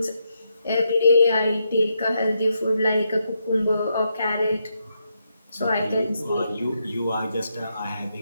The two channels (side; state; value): both; inverted; correlation -0.81